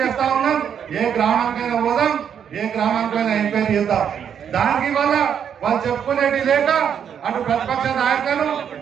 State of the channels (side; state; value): left; quieter; 8.2 dB